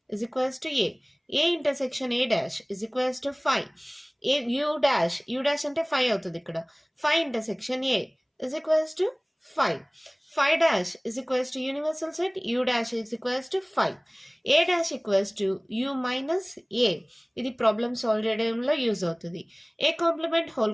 is equals to A. A intersection A dash is equals to phi. A U dash అంటే 5 అవుతుంది ఇక్కడ. 5 intersection A is equals to phi. 5 dash is equals to universal set. U dash is equals to phi. A dash equals to U minus A. ఇది problem solve చేయడంలో use అవుతుంది. A complement whole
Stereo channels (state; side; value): identical; both; correlation 1.00